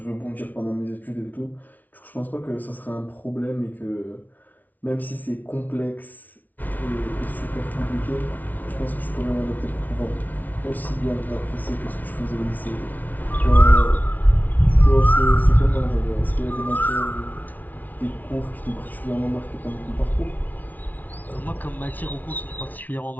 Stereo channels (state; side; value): late; right; 0.078 ms